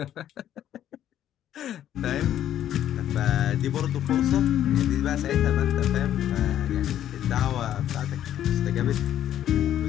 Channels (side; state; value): right; quieter; 11.2 dB